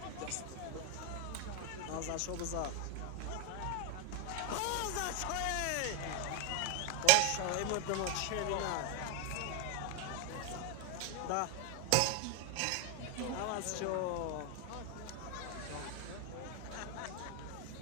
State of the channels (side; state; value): both; different; correlation 0.01